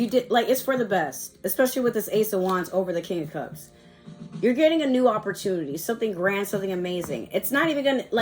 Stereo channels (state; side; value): identical; both; correlation 1.00